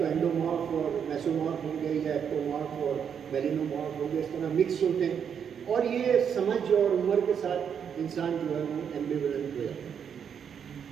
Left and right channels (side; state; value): left; quieter; 7.7 dB